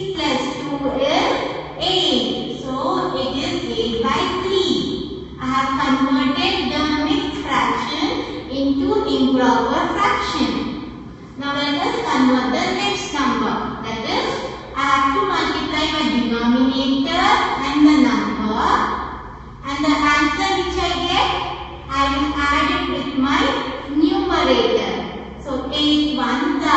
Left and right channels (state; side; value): identical; both; correlation 1.00